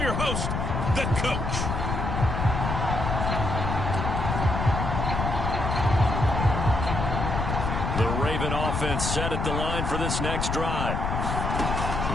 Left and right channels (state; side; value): noise; left; rumble, 2 dB below the sound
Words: host, the Coach. The Raven offense set at the line for this next drive.